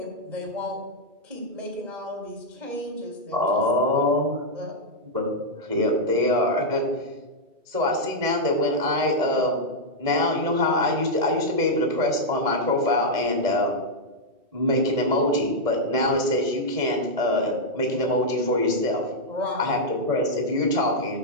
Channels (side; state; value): left; late; 1.7 ms